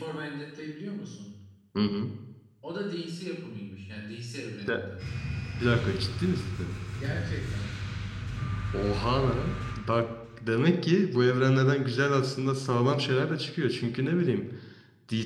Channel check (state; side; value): identical; both; correlation 1.00